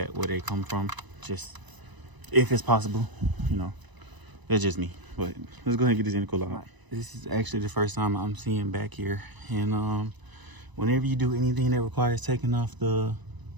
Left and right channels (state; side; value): late; left; 1.0 ms